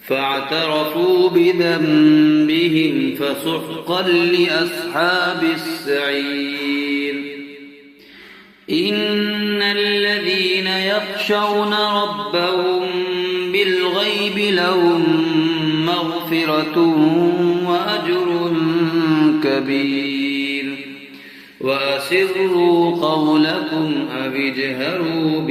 فاعترفوا بذنبهم فسحقا لأصحاب السعير إن الذين يخشون ربهم بالغيب لهم مغفرة وأجر كبير وأسروا قولكم أو اجهروا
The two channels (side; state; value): both; identical; correlation 1.00